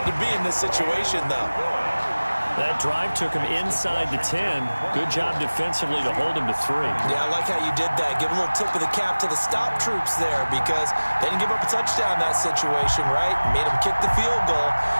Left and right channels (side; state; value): both; inverted; correlation -1.00